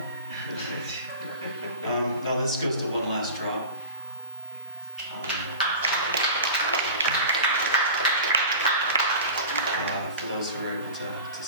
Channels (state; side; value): inverted; both; correlation -0.37